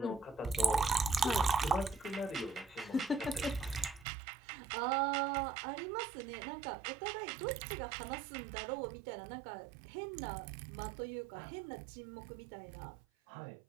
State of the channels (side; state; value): left; drops out; at 4.0 s